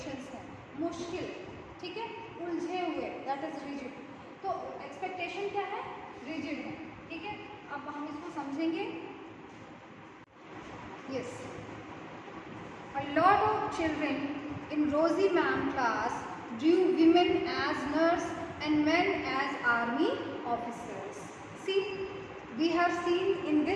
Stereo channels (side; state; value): both; identical; correlation 1.00